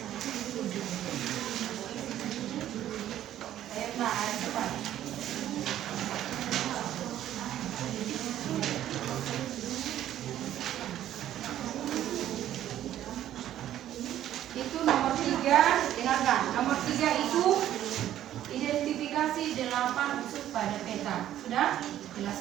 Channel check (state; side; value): quieter; left; 12.0 dB